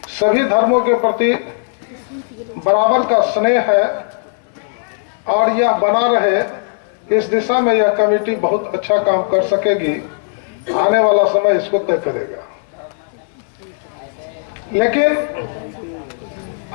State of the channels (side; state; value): right; silent; 61 dB below the other